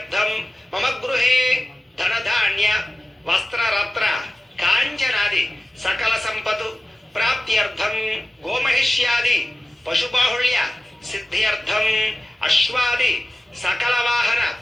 మమ గృహే ధనధాన్య వస్త్రరత్న కాంచనాది సకల సంపతు ప్రాప్త్యర్థం గోమహిష్యాది పశుబాహుళ్య సిద్ధ్యర్థం అశ్వాది సకల వాహన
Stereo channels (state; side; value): normal; both; correlation 0.95